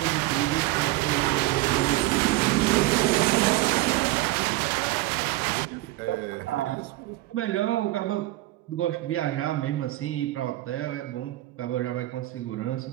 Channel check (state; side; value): quieter; left; 17.7 dB